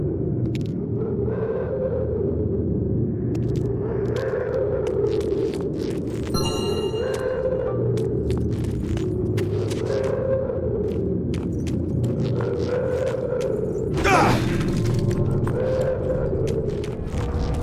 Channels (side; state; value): both; identical; correlation 1.00